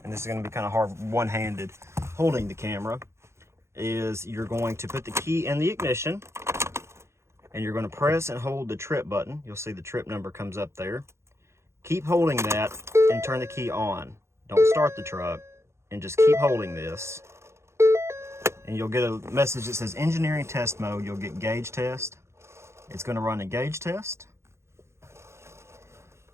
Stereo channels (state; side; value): late; left; 0.13 ms